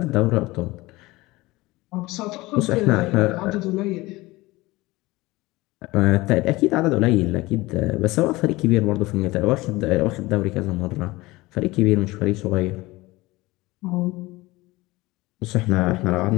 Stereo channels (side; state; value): right; quieter; 20.5 dB